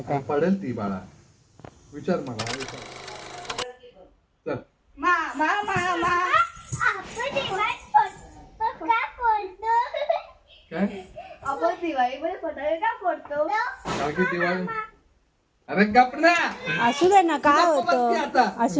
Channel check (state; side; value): identical; both; correlation 1.00